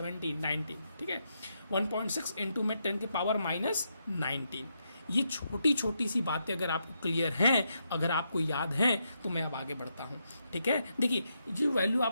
19, ठीक है, 1.6 × में 10 के पावर -19। ये छोटी छोटी सी बातें अगर आपको क्लियर हैं, अगर आपको याद हैं, तो मैं अब आगे बढ़ता हूँ, ठीक है। देखिए जो वैल्यू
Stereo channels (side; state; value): both; inverted; correlation -0.81